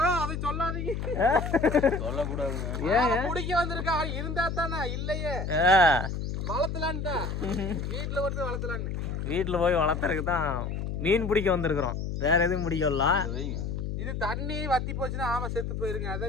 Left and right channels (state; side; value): noise; left; hum, 3 dB below the sound